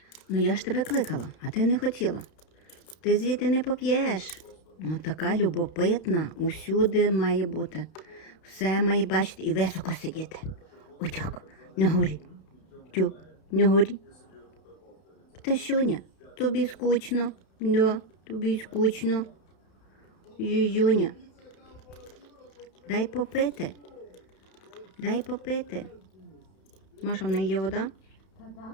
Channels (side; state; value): right; late; 31 ms